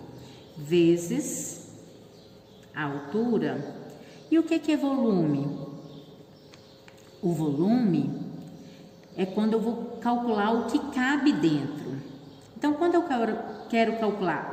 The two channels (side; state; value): both; identical; correlation 1.00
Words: vezes a altura. E o que é volume? O volume é quando eu vou calcular o que cabe dentro. Então, quando eu quero